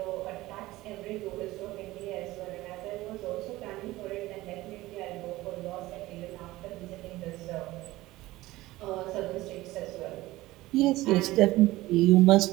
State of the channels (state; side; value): quieter; left; 18.0 dB